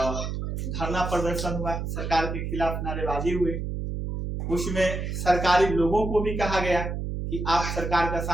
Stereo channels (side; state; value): right; noise; hum, 4 dB below the sound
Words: धरना प्रदर्शन हुआ, सरकार के खिलाफ नारेबाजी हुई। उसमें सरकारी लोगों को भी कहा गया कि आप सरकार का